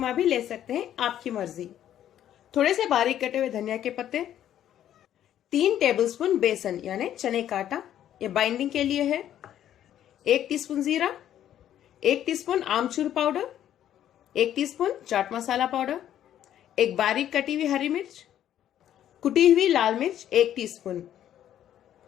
भी ले सकते हैं, आपकी मर्जी। थोड़े से बारीक कटे हुए धनिया के पत्ते, 3 टेबलस्पून बेसन यानी चने का आटा, ये बाइंडिंग के लिए है। 1 टीस्पून जीरा, 1 टीस्पून आमचूर powder, 1 teaspoon chaat masala powder, एक बारीक कटी हुई हरी मिर्च, कुटी हुई लाल मिर्च 1 टीस्पून।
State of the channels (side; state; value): right; quieter; 11.1 dB